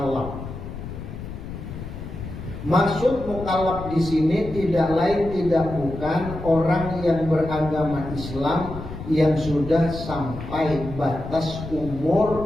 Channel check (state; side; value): noise; left; rumble, 10 dB below the sound